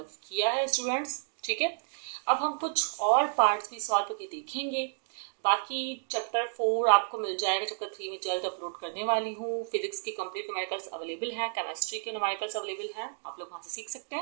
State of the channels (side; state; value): left; silent; digital silence